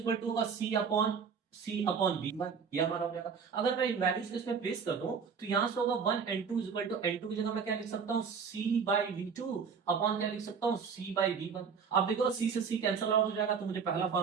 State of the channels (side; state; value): left; quieter; 6.2 dB